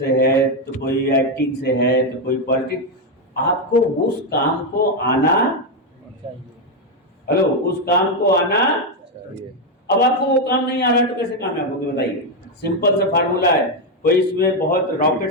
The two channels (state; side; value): normal; both; correlation 0.05